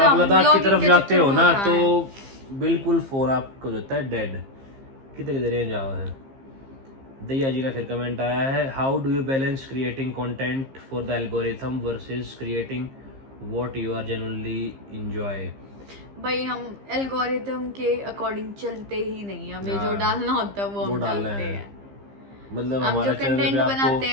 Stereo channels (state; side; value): late; left; 15 ms